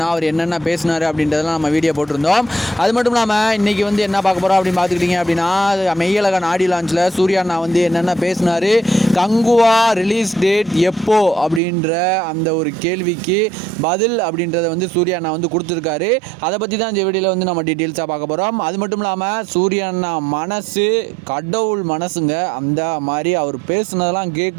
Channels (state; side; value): drops out; left; at 11.6 s